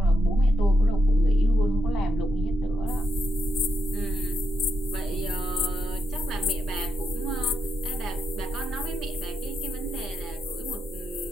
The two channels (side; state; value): both; normal; correlation 0.82